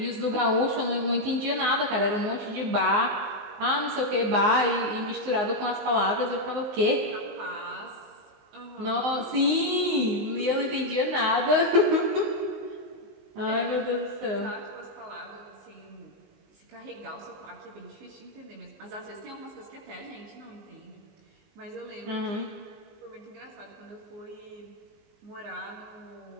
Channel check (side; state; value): left; late; 19 ms